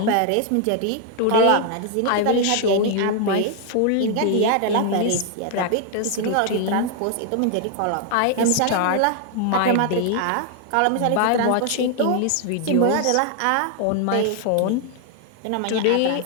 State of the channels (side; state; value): both; different; correlation 0.00